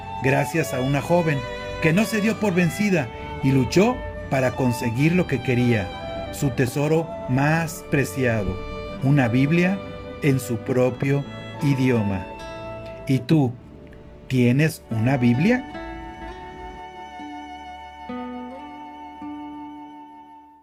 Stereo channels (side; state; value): both; identical; correlation 1.00